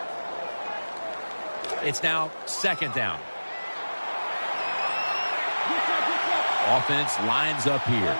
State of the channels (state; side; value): inverted; both; correlation -1.00